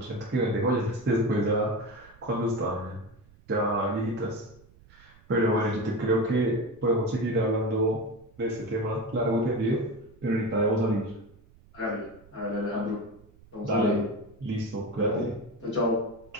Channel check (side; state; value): right; noise; rumble, 25 dB below the sound